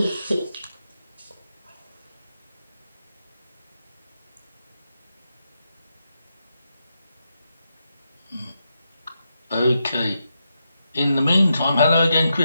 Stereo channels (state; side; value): inverted; both; correlation -0.85